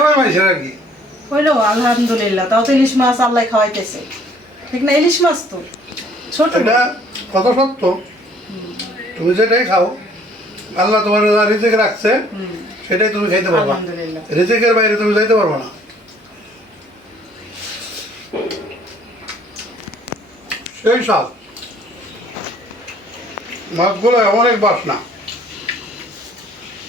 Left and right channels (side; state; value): both; normal; correlation 0.59